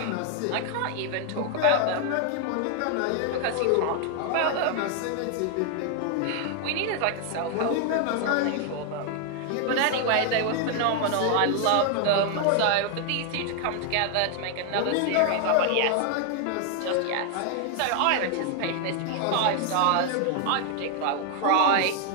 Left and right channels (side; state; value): both; different; correlation 0.00